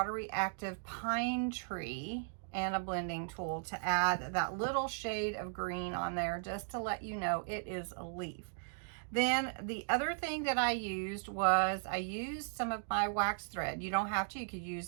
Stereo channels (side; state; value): left; silent; digital silence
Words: reactive pine tree and a blending tool to add that little shade of green on there, just to let you know it is a leaf. Then the other thing that I used was I used some of my wax thread. You don't have to. You could